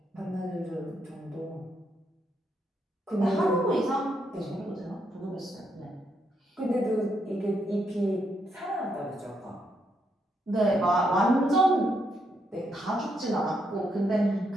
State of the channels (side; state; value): both; normal; correlation 0.78